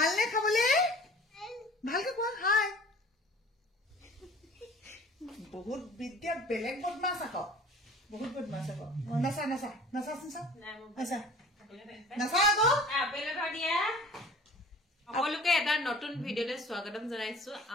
খাবলে? ভালকে কোৱা হাই। বহুত বিদ্যা বেলেগ বদমাছ আকৌ, বহুত বদমাছ আকৌ। নাচা নাচা নাচা নাচা নাচা নাচা আকৌ। আপেল এটা দিয়া। সকলোকে এটা নতুন ভিডিঅ'লৈ স্বাগতম জনাইছো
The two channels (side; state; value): both; normal; correlation 0.46